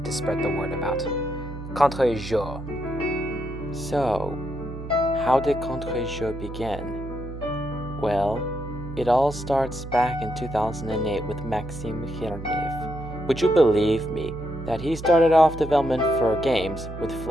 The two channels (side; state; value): right; noise; hum, 10 dB below the sound